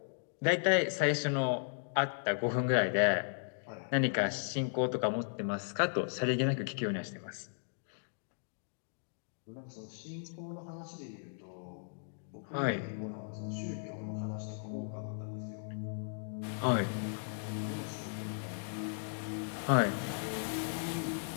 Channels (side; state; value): right; silent; digital silence